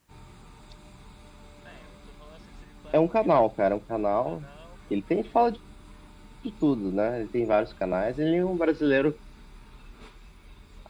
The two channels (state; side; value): identical; both; correlation 1.00